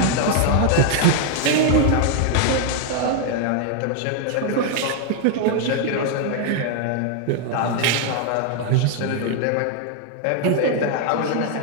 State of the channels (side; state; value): both; different; correlation 0.00